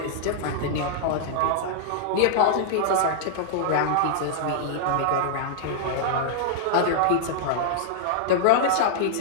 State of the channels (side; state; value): both; different; correlation -0.01